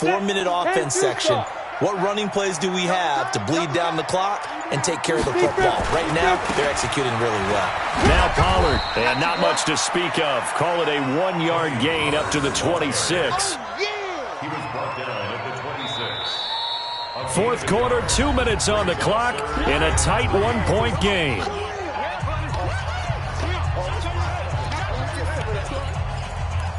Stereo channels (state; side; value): identical; both; correlation 1.00